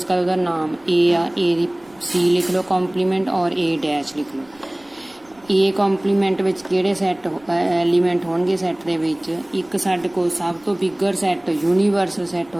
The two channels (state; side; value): noise; right; rumble, 30 dB below the sound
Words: कर उसका नाम ए आ, ए दी सी लिख लो कॉम्पलीमेंट और ए डैश लिख लो। ए कॉम्पलीमेंट विच किहड़े सैट एलीमेंट होणगे सैट दे विच? एक साडे कोल सब तो बिगर सैट यूनीवर्सल सैट